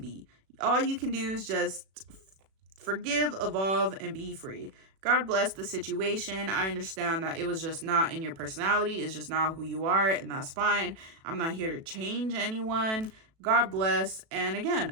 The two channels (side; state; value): left; late; 37 ms